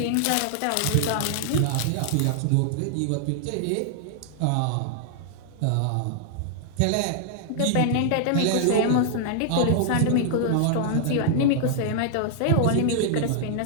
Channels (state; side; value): different; both; correlation -0.01